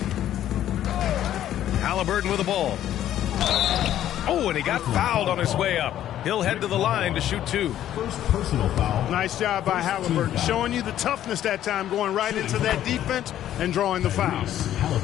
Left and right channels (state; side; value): quieter; right; 11.8 dB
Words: Halliburton with the ball. Oh, and he got fouled on his way up. He'll head to the line to shoot 2. First personal foul. Nice job by Halliburton, showing you the toughness that time, going right into that defense and drawing the foul.